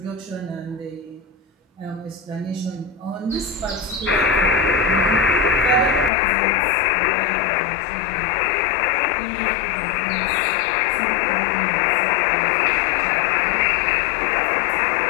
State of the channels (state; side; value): drops out; right; at 6.1 s